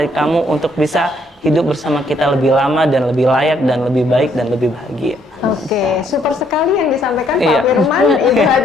kamu untuk bisa hidup bersama kita lebih lama dan lebih layak dan lebih baik dan lebih bahagia. Oke, super sekali yang disampaikan Pak Iya. Firman, Ibu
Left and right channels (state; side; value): normal; both; correlation 0.69